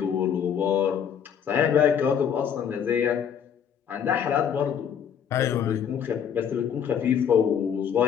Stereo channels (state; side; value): quieter; right; 8.2 dB